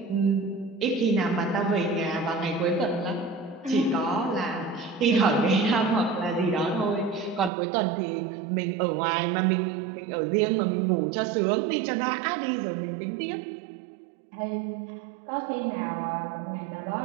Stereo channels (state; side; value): drops out; left; at 7.5 s